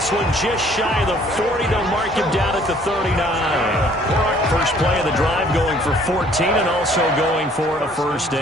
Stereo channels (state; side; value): normal; both; correlation 0.58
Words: one just shy of the 40. They'll mark him down at the 39. First play of the drive going for 14 and also going for a first